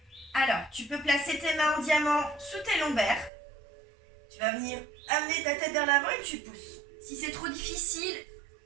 Alors, tu peux placer tes mains en diamant sous tes lombaires. Tu vas venir amener ta tête vers l'avant et tu pousses. Si c'est trop difficile,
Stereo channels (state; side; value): drops out; left; at 3.3 s